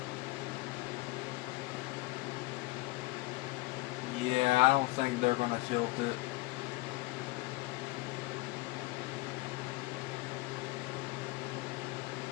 Yeah, I don't think they're going to tilt it.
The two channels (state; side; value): quieter; right; 21.5 dB